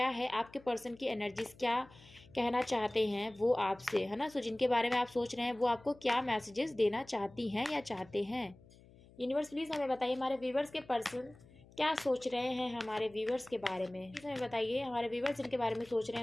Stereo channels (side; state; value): left; noise; hum, 24 dB below the sound